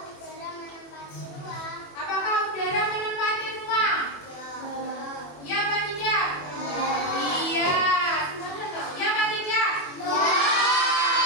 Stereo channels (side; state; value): right; late; 21 ms